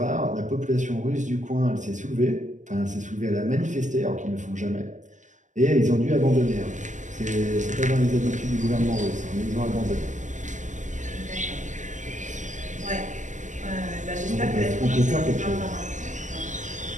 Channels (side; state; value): left; late; 0.36 ms